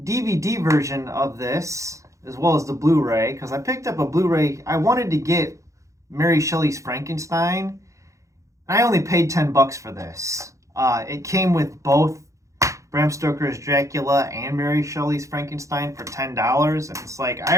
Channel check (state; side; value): late; left; 0.15 ms